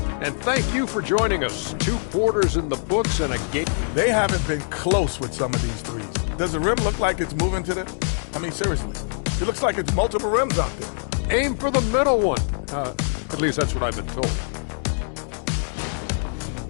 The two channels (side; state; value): right; silent; 63 dB below the other